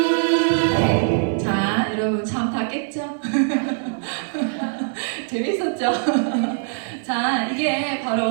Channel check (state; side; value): silent; left; digital silence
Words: 자, 여러분 참 다 깼죠? 재밌었죠? 자, 이게